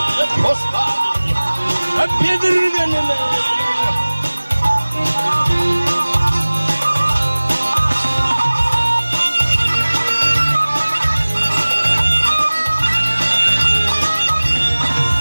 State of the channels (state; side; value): inverted; both; correlation -1.00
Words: hoş geldin hep yedirgenime